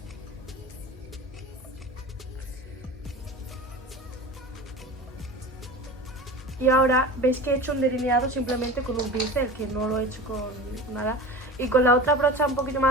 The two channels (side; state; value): both; normal; correlation 0.33